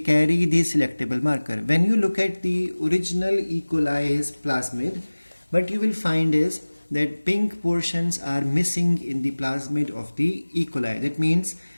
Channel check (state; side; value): inverted; both; correlation -1.00